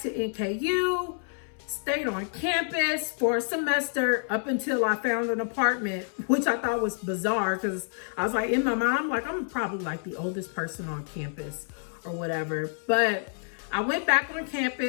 to NKU, stayed on campus for a semester up until I found an apartment, which I thought was bizarre because I was like, in my mind, I'm like, I'm probably like the oldest person on campus or whatever. But I went back on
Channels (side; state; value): right; silent; 59 dB below the other